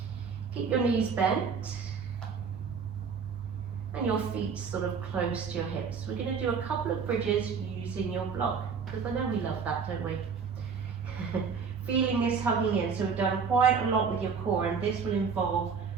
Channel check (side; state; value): left; quieter; 5.9 dB